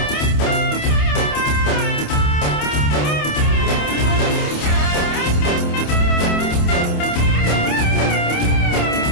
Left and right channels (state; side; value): late; right; 28 ms